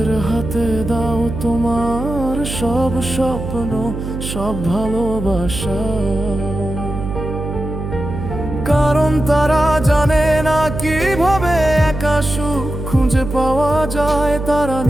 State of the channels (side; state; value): right; noise; hum, 6 dB below the sound